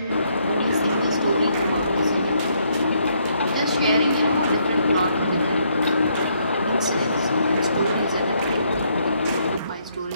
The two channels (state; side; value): inverted; both; correlation -0.72